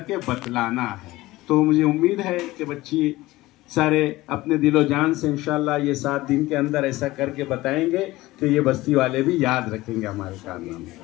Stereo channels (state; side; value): quieter; right; 18.5 dB